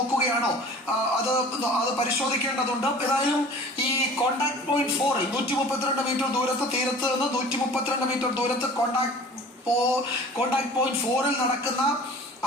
അത് പരിശോധിക്കേണ്ടതുണ്ട്. ഏതായാലും ഈ കോണ്ടാക്ട് പോയിന്റ് 4 132 മീറ്റർ ദൂരത്ത്, തീരത്ത് നിന്ന് 132 മീറ്റർ ദൂരത്ത് കോണ്ടാക്ട് പോയിന്റ് 4 നടക്കുന്ന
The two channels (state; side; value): normal; both; correlation 0.44